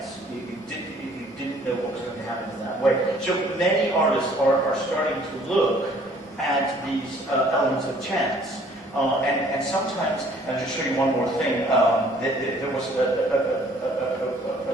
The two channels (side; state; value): both; normal; correlation 0.57